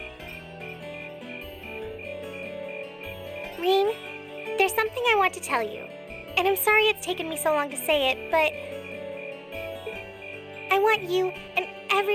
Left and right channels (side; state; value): both; identical; correlation 1.00